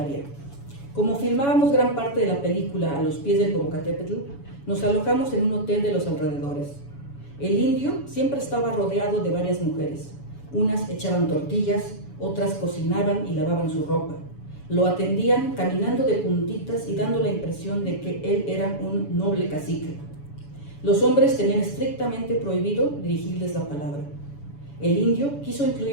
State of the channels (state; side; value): late; right; 7.1 ms